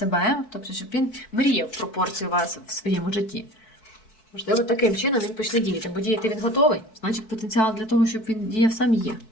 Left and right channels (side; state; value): right; late; 4.6 ms